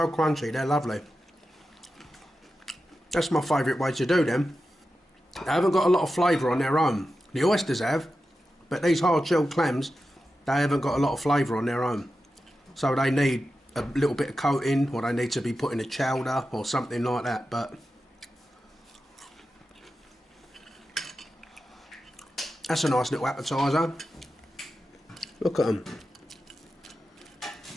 crunchy, they're lovely. That's my favourite way to do them. They haven't got a lot of flavour on their own. The oysters have, but these hard-shelled clams, they haven't got a lot of flavour on their own. So they need a little bit of coating, or they need to be put in a chowder or something like that, but that's a nice little appetizer. Look at them.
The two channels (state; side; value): normal; both; correlation 0.91